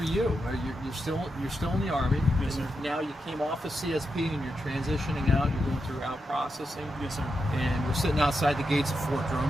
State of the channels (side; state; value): both; normal; correlation 0.86